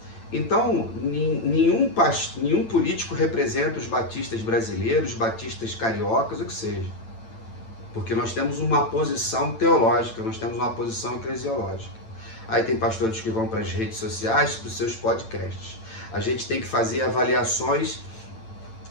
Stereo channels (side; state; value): right; late; 9.0 ms